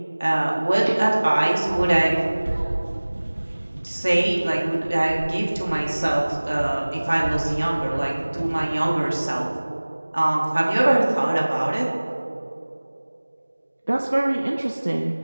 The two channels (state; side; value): inverted; both; correlation -1.00